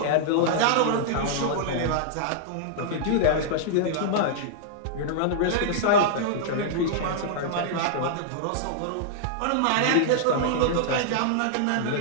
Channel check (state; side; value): different; both; correlation -0.01